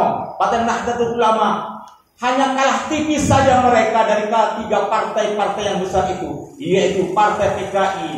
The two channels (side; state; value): both; identical; correlation 1.00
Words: Partai Nahdlatul Ulama, hanya kalah tipis saja mereka dari tiga partai-partai yang besar itu, yaitu Partai